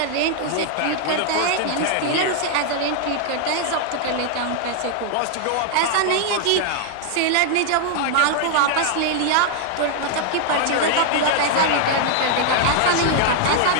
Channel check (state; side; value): different; both; correlation 0.00